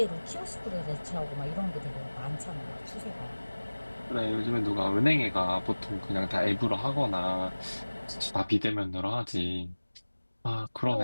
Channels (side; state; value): both; inverted; correlation -1.00